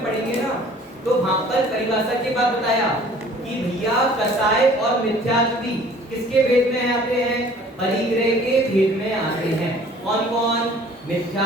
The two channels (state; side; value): normal; both; correlation 0.51